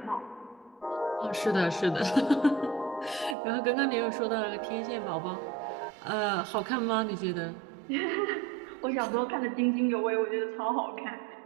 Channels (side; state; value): left; drops out; at 3.4 s